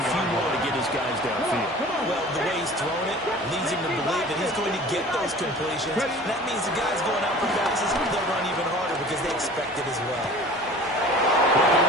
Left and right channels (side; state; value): both; normal; correlation 0.43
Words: few more to get his guys downfield. Well, the way he's throwing it leads him to believe that he's going to get those completions. That means the guys going out for passes, they'll run even harder because they expect it as well.